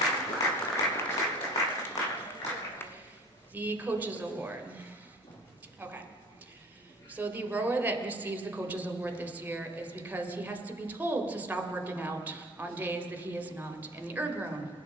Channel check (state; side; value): normal; both; correlation 0.44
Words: The Coaches Award. Okay. So the rower that receives the Coaches Award this year is because he has to be told to stop working out on days that he is not in the erg room